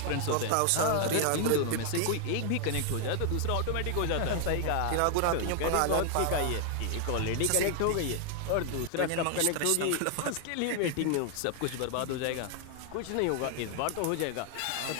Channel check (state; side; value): different; both; correlation 0.00